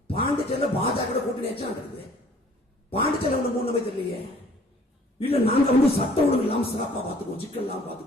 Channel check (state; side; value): normal; both; correlation 0.55